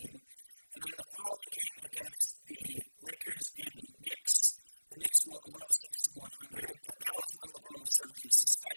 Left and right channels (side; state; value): both; inverted; correlation -1.00